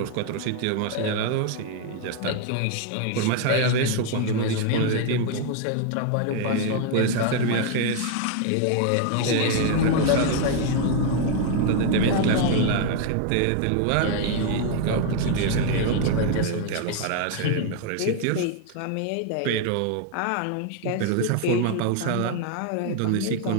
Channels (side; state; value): both; different; correlation 0.00